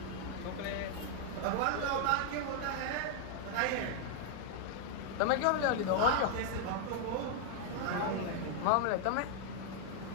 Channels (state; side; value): different; both; correlation 0.00